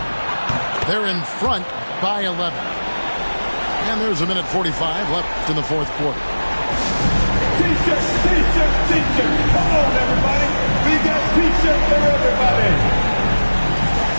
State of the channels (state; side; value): inverted; both; correlation -1.00